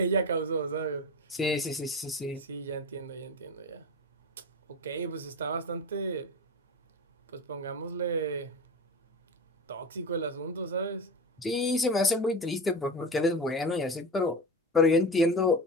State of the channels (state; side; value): normal; both; correlation 0.27